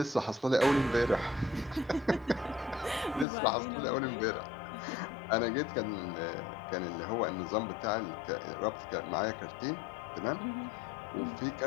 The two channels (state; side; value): drops out; right; at 3.2 s